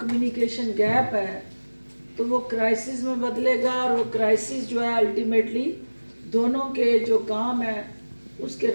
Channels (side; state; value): both; inverted; correlation -1.00